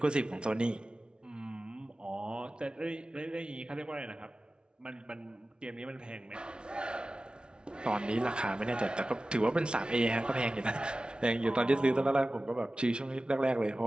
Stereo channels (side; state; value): left; late; 0.056 ms